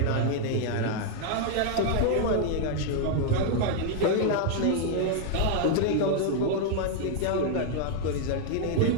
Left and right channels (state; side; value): different; both; correlation 0.00